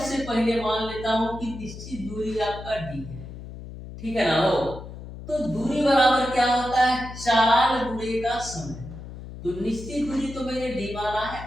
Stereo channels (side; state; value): left; noise; hum, 12 dB below the sound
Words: पहले मान लेता हूं कि निश्चित दूरी आपका डी है, ठीक है ना हो। तो दूरी बराबर क्या होता है, चाल गुणे का समय। तो निश्चित दूरी तो मैंने डी माना है,